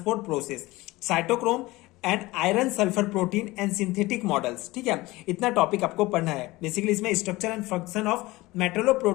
process, cytochrome and iron sulphur protein and synthetic models, ठीक है, इतना टॉपिक आपको पढ़ना है। बेसिकली इसमें structure and function of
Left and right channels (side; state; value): right; quieter; 20.1 dB